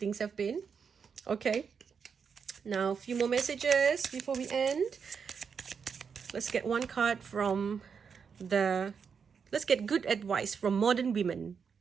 have been. Okay, now a few more messages before we end. Let's get one card from let's get good advice from modern women.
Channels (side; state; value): left; quieter; 6.3 dB